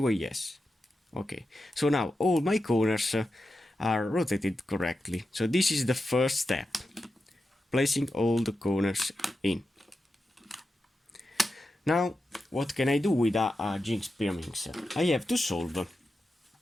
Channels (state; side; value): normal; both; correlation 0.90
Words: yes. Okay, so now all my corners are rotated correctly. So this is the first step, placing all the corners in. Now, what can I do with a Jinx Pyraminx? I have to solve